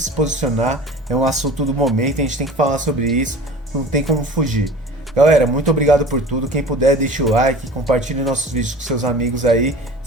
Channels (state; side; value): normal; both; correlation 0.40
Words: posicionar. É um assunto do momento, a gente tem que falar sobre isso, não tem como fugir. Galera, muito obrigado por tudo. Quem puder, deixa o like, compartilhe nossos vídeos com seus amigos aí,